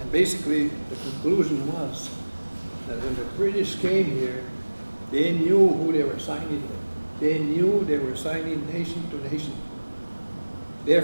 And basically, the conclusion was that when the British came here, they knew who they were signing with. They knew they were signing nation to nation.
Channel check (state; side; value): inverted; both; correlation -1.00